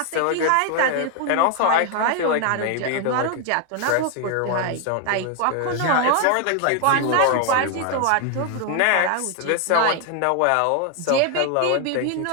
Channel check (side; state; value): both; different; correlation 0.01